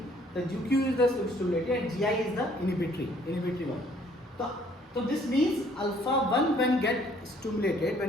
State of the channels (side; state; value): both; normal; correlation 0.61